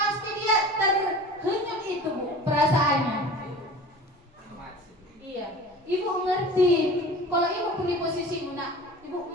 dia terhanyut itu Bu, perasaannya. Iya, Ibu ngerti. Kalau Ibu pun di posisimu, nak, Ibu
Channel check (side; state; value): both; normal; correlation 0.39